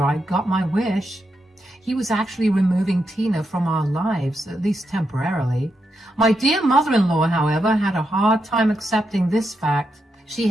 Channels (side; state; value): both; normal; correlation 0.84